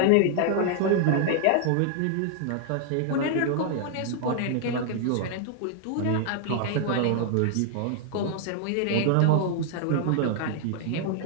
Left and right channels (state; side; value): different; both; correlation 0.00